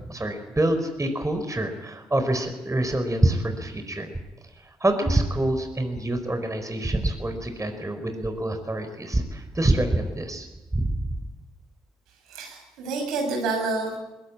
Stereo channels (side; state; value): both; normal; correlation 0.85